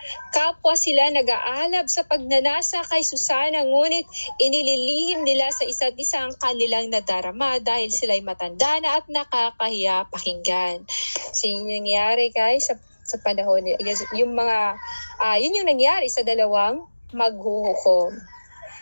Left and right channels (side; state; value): both; inverted; correlation -1.00